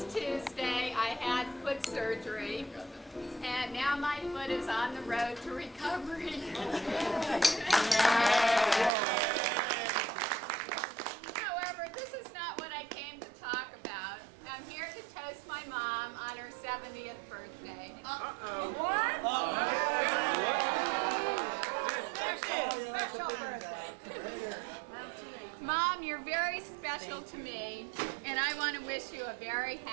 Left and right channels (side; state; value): left; drops out; at 8.9 s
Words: Tuesday I had foot surgery, and now my foot is on the road to recovery. However, this is not what I came to talk about. I'm here to toast my mom on her 70th birthday. What? Special birthday. Mom, you're very special to me, and I want to wish you a very